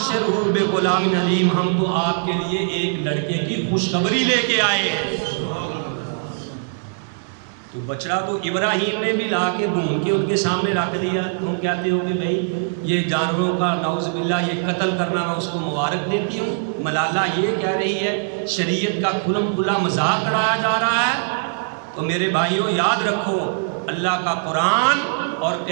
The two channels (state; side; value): silent; left; digital silence